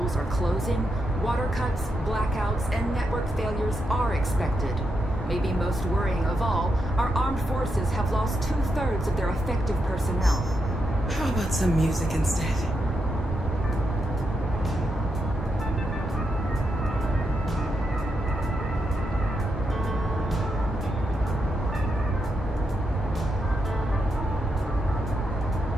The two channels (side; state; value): both; normal; correlation 0.84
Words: are closing, water cuts, blackouts, and network failures are expected. Maybe most worrying of all, our armed forces have lost 2/3 of their effective personnel. How about some music instead?